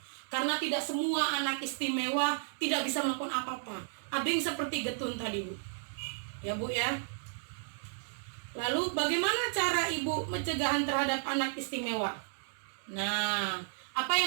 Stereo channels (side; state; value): left; silent; digital silence